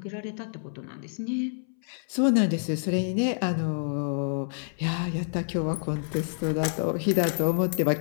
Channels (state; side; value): silent; right; 60 dB below the other